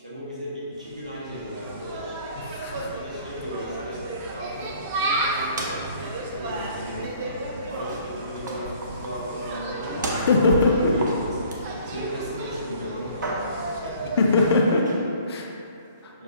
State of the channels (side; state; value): both; inverted; correlation -0.55